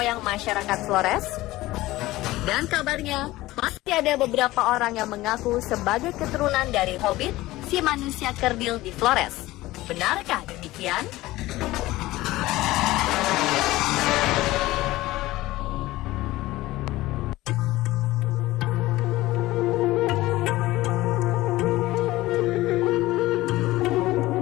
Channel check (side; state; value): right; quieter; 17.8 dB